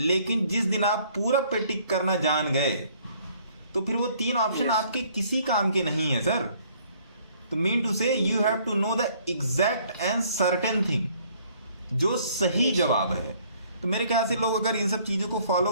जिस दिन आप पूरब पे टिक करना जान गए, तो फिर वो 3 ऑप्शन आपके किसी काम के नहीं है सर। तो mean to say you have to know the exact and certain thing, जो सही जवाब है। तो मेरे ख्याल से लोग अगर इन सब चीजों को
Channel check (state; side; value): inverted; both; correlation -0.61